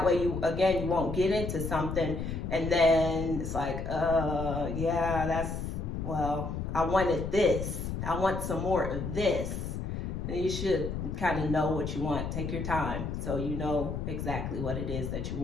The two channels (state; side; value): noise; left; rumble, 4 dB below the sound